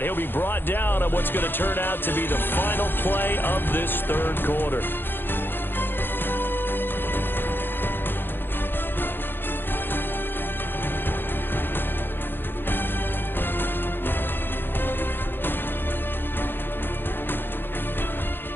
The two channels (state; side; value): late; right; 0.10 ms